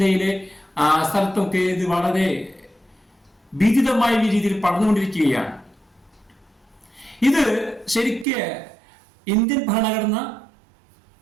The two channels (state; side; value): drops out; left; at 8.2 s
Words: സ്ഥലത്തൊക്കെ ഇത് വളരെ ഭീതിതമായ രീതിയിൽ പടർന്നുകൊണ്ടിരിക്കുകയാണ്. ഇത് ശരിക്ക് ഇന്ത്യൻ ഭരണഘടന